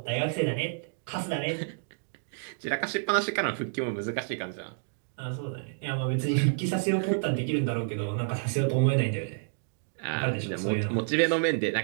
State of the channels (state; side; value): silent; left; digital silence